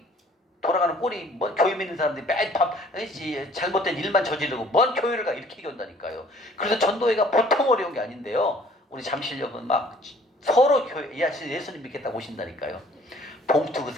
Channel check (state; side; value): normal; both; correlation 0.55